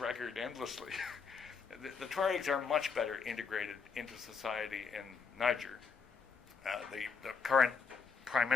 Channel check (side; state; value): right; quieter; 5.5 dB